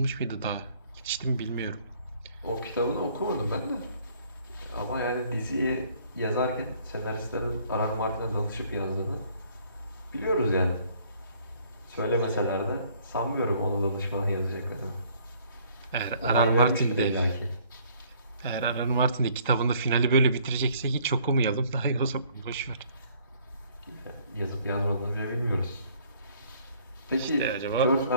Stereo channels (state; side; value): inverted; both; correlation -0.61